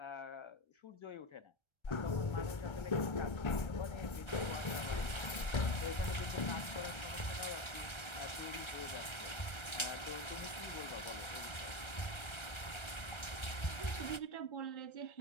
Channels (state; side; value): late; right; 1.3 ms